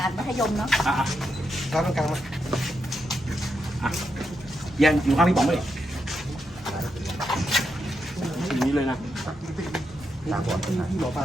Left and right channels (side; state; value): both; normal; correlation 0.83